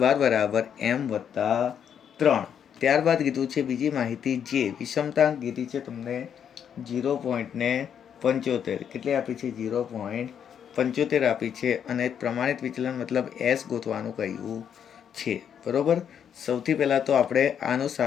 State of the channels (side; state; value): right; quieter; 8.4 dB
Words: બરાબર m વત્તા 3. ત્યારબાદ કીધું છે બીજી માહિતી જે વિષમતાંક કીધી છે તમને 0.75. કેટલી આપી છે? 0.75 આપી છે. અને પ્રમાણિત વિચલન મતલબ એસ ગોતવાનું કહ્યું છે. બરોબર, સૌથી પહેલાં તો આપણે આનું